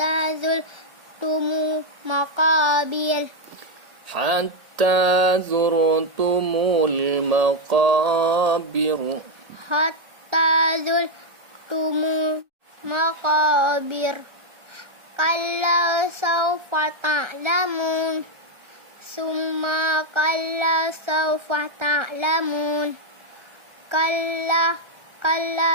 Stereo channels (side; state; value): left; late; 1.3 ms